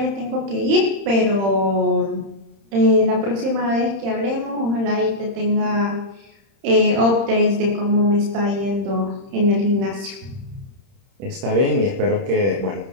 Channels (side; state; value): left; late; 30 ms